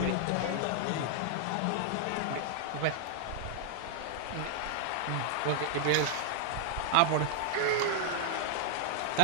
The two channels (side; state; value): both; different; correlation -0.01